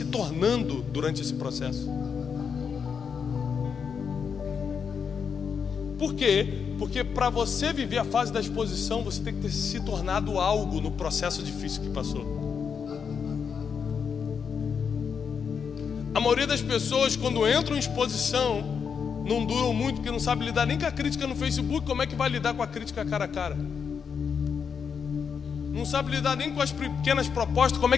tornando durante esse processo. Por quê? Porque para você viver a fase da exposição, você tem que ter se tornado algo no processo difícil que passou. A maioria das pessoas, quando entram em exposição, não duram muito, porque não sabe lidar nem com a crítica no Facebook. Como é que vai lidar com a crítica cara a cara? Não sabe lidar nem com as pequenas propostas. Como é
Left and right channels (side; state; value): right; quieter; 6.5 dB